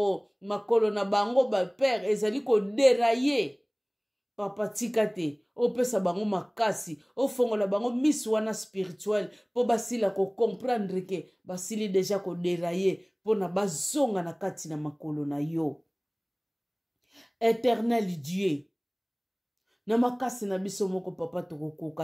makolo na bango ba père ezali koderaye papa tika te opesa bango makasi ofongola bango miso wana spirituel po basila comprendre ke basili deja koderaye pona bazonga na kati na makolo na yo éternel Dieu na makasi na biso moko papa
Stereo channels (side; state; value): both; identical; correlation 1.00